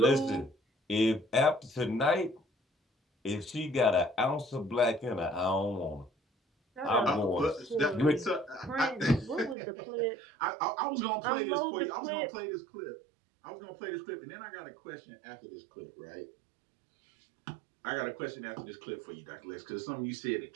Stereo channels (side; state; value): left; drops out; at 9.6 s